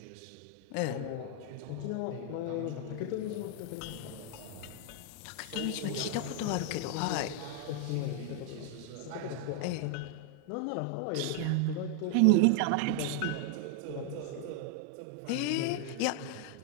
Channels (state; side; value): different; both; correlation 0.00